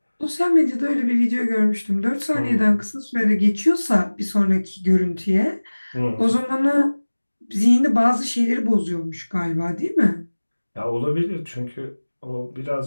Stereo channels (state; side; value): inverted; both; correlation -1.00